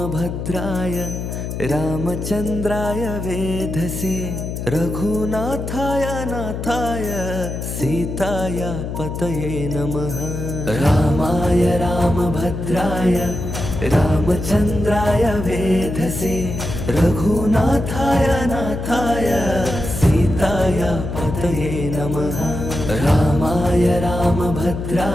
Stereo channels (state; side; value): noise; left; hum, 5 dB below the sound